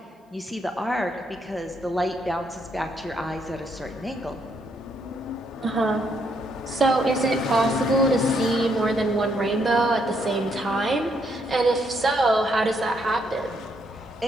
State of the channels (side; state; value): both; normal; correlation 0.73